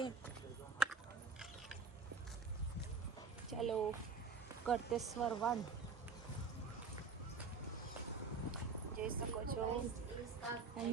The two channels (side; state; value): left; quieter; 4.7 dB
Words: ચાલો, કરતેશ્વર વન જોઈ શકો છો.